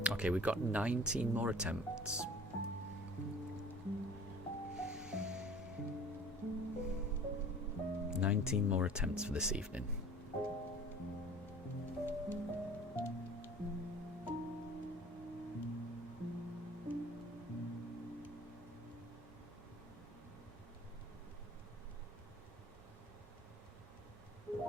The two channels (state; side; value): normal; both; correlation 0.45